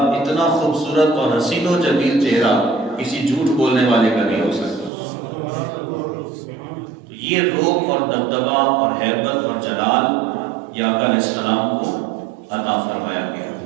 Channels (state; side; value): drops out; left; at 4.9 s